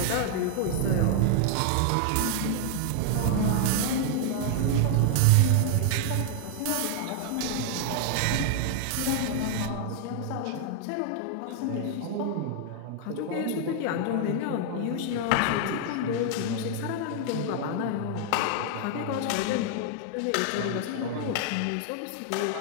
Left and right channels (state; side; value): different; both; correlation 0.00